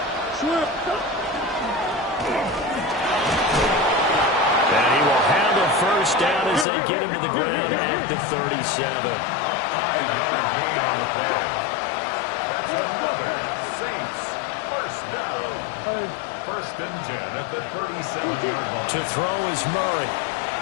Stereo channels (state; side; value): drops out; right; at 6.7 s